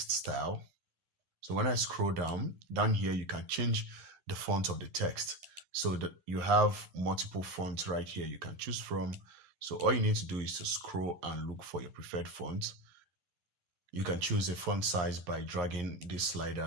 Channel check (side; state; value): left; late; 11 ms